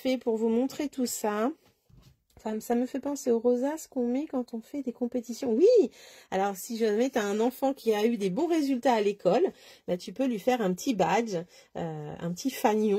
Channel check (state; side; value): identical; both; correlation 1.00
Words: pour vous montrer tout ça. Enfin, ça me fait penser aux rosaces qu'on met quand on fait des compétitions. Oui! Alors, si jamais tu as un enfant qui a eu des bons résultats à l'école, bah, tu peux lui faire un petit badge, un petit